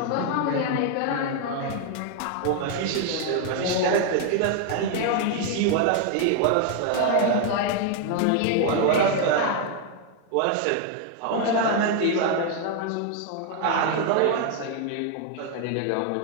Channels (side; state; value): both; different; correlation 0.00